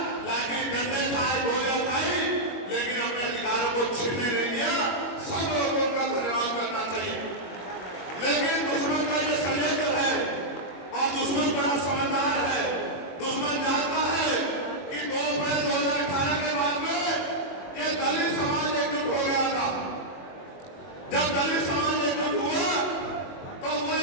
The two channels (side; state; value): right; late; 22 ms